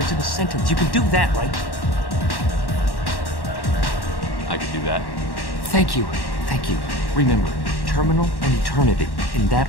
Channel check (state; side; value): late; right; 1.1 ms